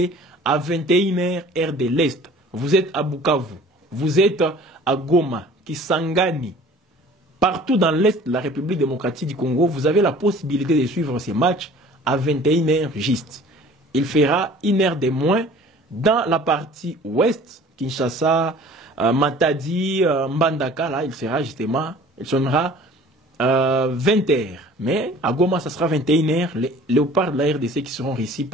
à 21h heure de l'Est. Vous êtes à Bukavu, vous êtes à Goma, Kisangani, partout dans l'Est de la République démocratique du Congo, vous avez la possibilité de suivre ces matchs à 21h juste. Il fera une heure de moins dans la partie ouest, Kinshasa, Matadi, Mbandaka, là, il sonnera 20h. Mais à Goma, ça sera 21h. Les léopards de la RDC qui seront réussis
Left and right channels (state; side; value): normal; both; correlation 0.48